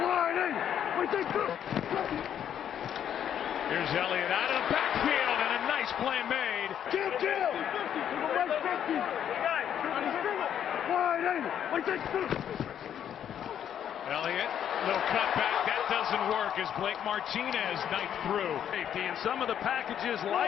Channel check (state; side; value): quieter; right; 9.5 dB